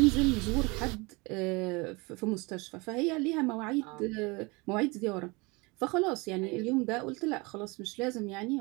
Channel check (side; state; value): left; quieter; 26.4 dB